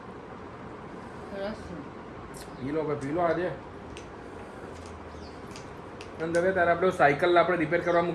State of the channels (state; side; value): identical; both; correlation 1.00